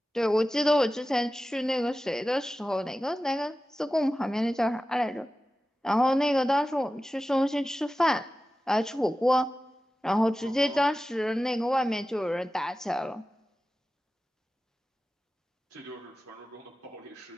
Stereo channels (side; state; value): both; normal; correlation 0.95